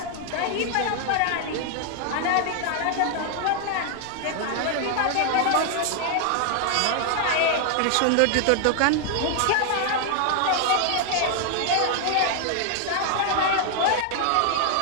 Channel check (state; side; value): different; both; correlation 0.00